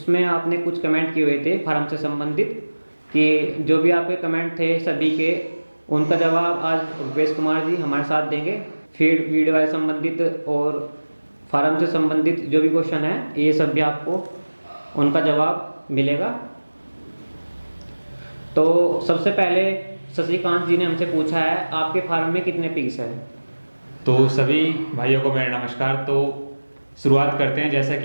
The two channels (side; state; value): both; inverted; correlation -1.00